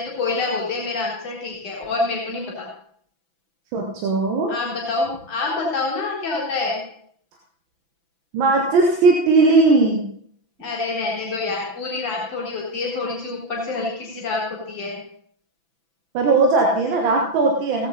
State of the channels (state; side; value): late; left; 6.0 ms